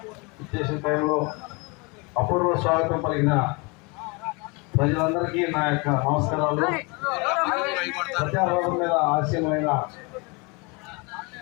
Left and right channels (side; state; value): right; quieter; 28.9 dB